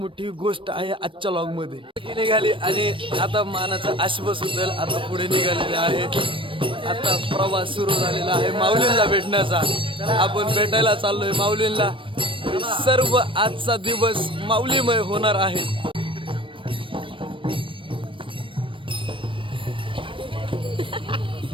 गोष्ट आहे आजच्या लॉगमध्ये. निघाली आणि आता मानाचा आश्वास होईल. आता पुढे निघालेले आहे. आता प्रवास सुरू झालेला आहे माऊलींना भेटण्याचा. आपण भेटायला चाललोय माऊलींना. सर्व आजचा दिवस माऊलीमय होणार आहे.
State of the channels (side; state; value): left; late; 0.25 ms